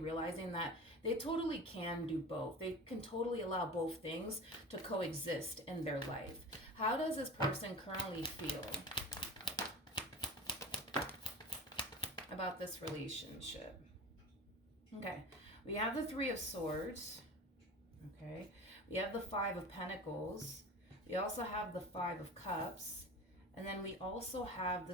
that they totally can do both. They can totally allow both things to coexist in their life. How does this person currently feel about this relationship? Okay, we have the Three of Swords. Okay, we have the Five of Pentacles. We also have the Five of Cups. And then we also have the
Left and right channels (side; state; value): both; normal; correlation 0.33